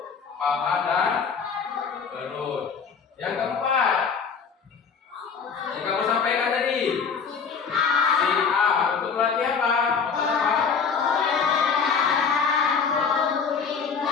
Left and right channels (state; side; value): quieter; right; 5.9 dB